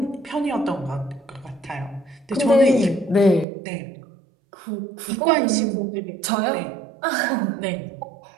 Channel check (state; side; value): drops out; left; at 3.5 s